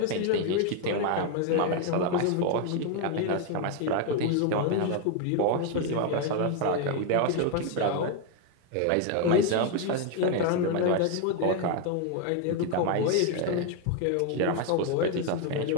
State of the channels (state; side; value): different; both; correlation 0.01